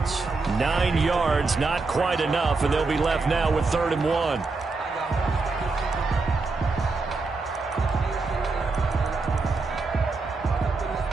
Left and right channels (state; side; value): quieter; left; 3.9 dB